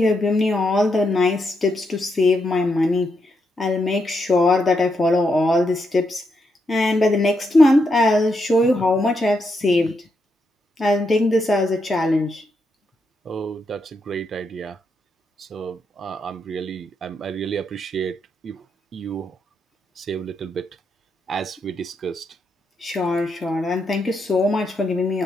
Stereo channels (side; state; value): both; normal; correlation 0.81